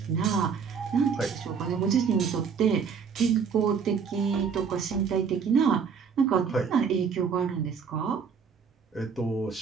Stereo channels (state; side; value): quieter; left; 6.3 dB